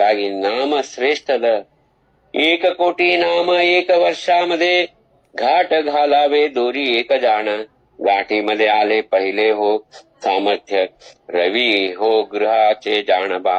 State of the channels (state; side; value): identical; both; correlation 1.00